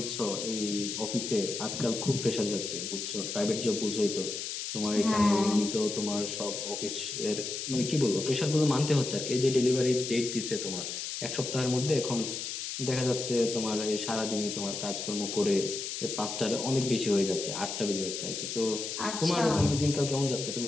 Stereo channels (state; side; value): noise; left; hiss, 5 dB below the sound